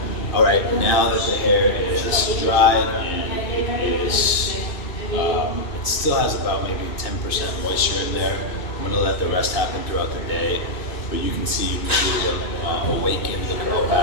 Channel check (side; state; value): right; late; 2.5 ms